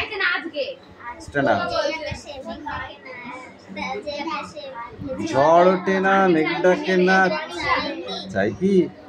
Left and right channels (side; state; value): both; identical; correlation 1.00